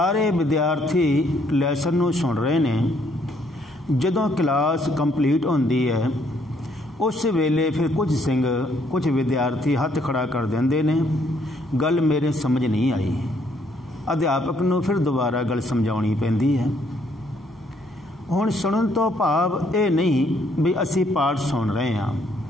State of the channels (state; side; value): normal; both; correlation 0.68